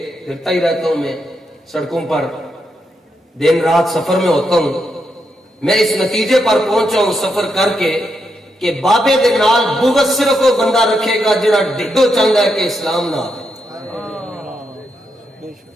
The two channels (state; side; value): normal; both; correlation 0.82